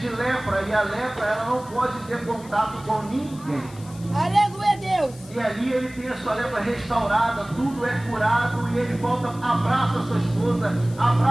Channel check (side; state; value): left; noise; hiss, 22 dB below the sound